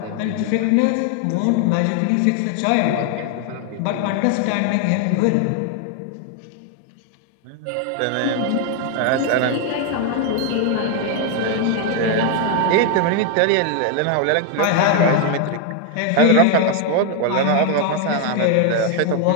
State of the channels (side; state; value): both; different; correlation 0.00